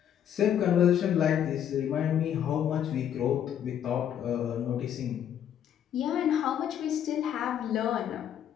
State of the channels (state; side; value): quieter; right; 9.7 dB